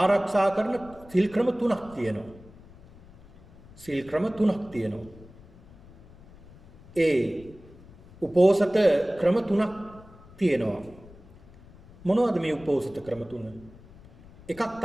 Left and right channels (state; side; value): noise; left; rumble, 22 dB below the sound